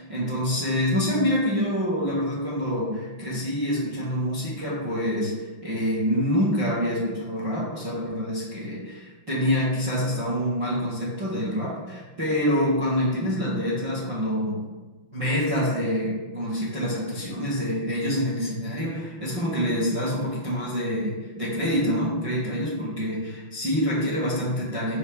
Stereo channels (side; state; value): left; late; 5.9 ms